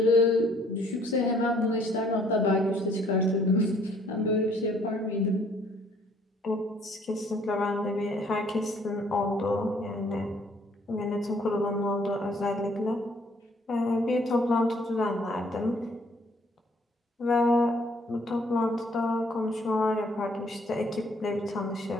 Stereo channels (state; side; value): normal; both; correlation 0.62